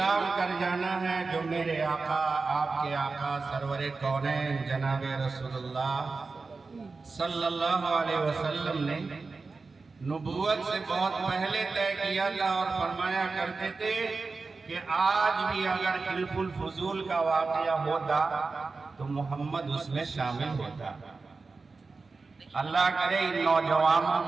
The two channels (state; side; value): quieter; left; 4.1 dB